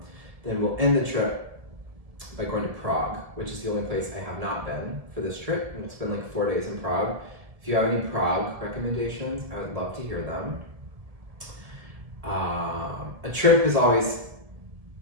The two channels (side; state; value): left; late; 1.7 ms